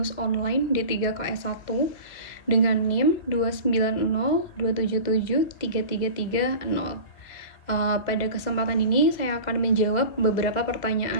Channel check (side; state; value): right; late; 2.1 ms